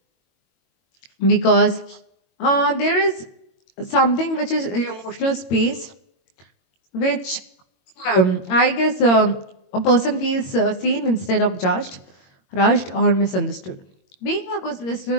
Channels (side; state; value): right; late; 22 ms